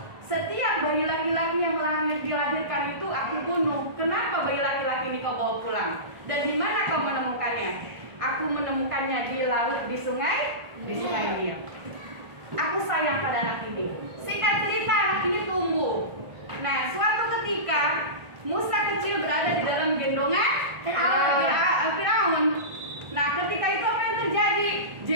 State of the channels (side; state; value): left; late; 1.4 ms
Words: setiap bayi laki-laki yang dilahirkan itu aku bunuh. Kenapa bayi laki-laki ini kau bawa pulang? Dan di mana kau menemukannya? Aku menemukannya di laut, di sungai Nil. Aku sayang pada anak ini. Singkat cerita, anak ini tumbuh. Nah, suatu ketika Musa kecil berada di dalam gendongan Firaun. Nah, ketika itu apa yang terjadi?